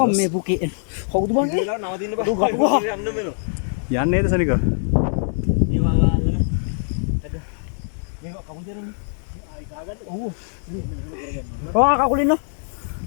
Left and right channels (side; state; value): right; silent; digital silence